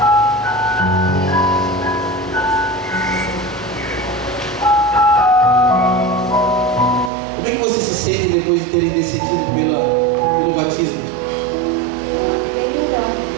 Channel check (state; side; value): drops out; left; at 7.1 s